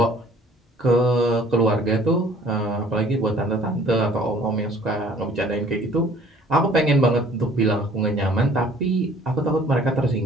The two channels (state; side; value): normal; both; correlation 0.54